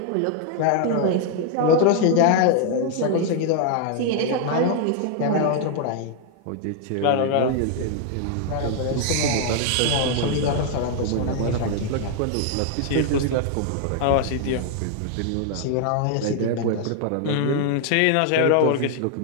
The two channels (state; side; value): different; both; correlation 0.00